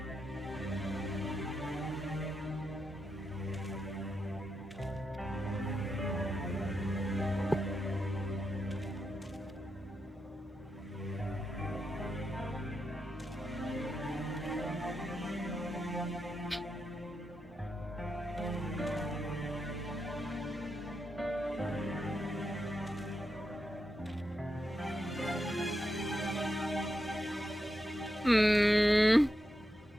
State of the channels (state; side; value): normal; both; correlation 0.86